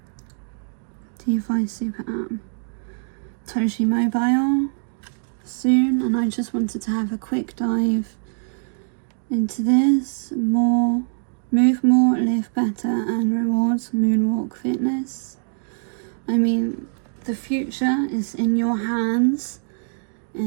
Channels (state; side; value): silent; left; 63 dB below the other